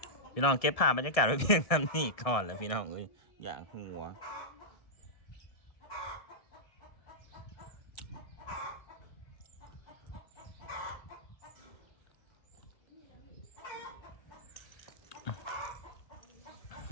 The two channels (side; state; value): right; late; 1.7 ms